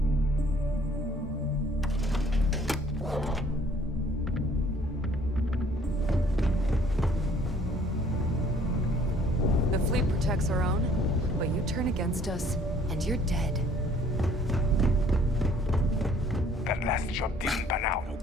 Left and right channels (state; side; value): normal; both; correlation 0.58